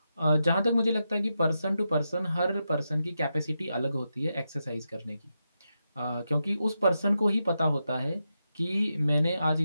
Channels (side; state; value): both; inverted; correlation -0.87